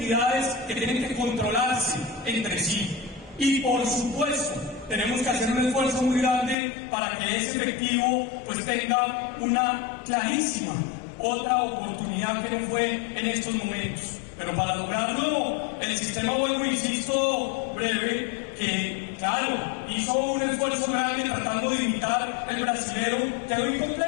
que tienen que controlarse entre sí. Y por supuesto, tenemos que hacer un esfuerzo muy grande para que ese efectivo pues tenga una clarísima otra oportunidad que no fue en estos momentos. Pero para lograrlo, el sistema, vuelvo insisto, breve, que claro, hizo un esfuerzo grande tratando de imitar el brasilero, quedó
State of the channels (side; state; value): right; drops out; at 6.6 s